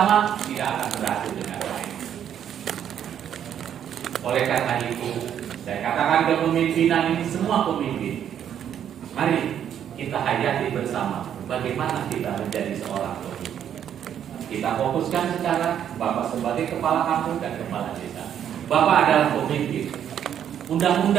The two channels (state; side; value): quieter; left; 9.5 dB